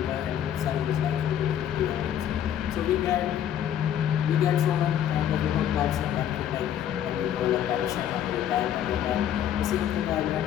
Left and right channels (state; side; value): quieter; right; 10.1 dB